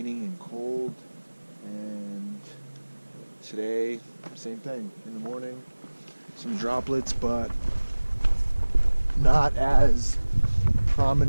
and cold, and today same thing. In the morning some droplets, but not as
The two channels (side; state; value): both; inverted; correlation -1.00